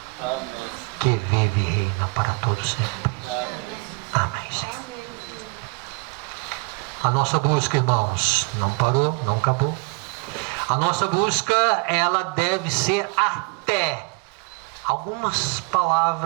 Amém. que vive e reina para todos sempre. Amém. Amém, Senhor. A nossa busca, irmãos, não parou, não acabou. A nossa busca, ela deve ser até. Algumas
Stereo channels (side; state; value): left; quieter; 31.4 dB